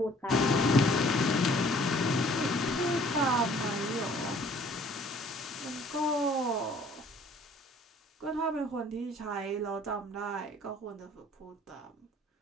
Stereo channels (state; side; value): normal; both; correlation 0.56